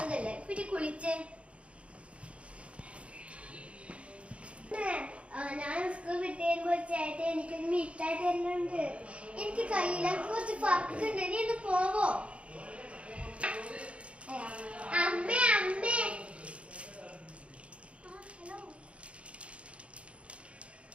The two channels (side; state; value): left; late; 0.061 ms